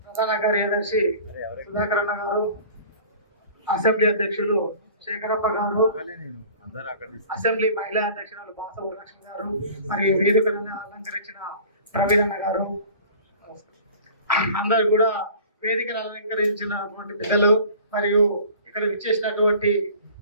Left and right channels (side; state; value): both; inverted; correlation -0.44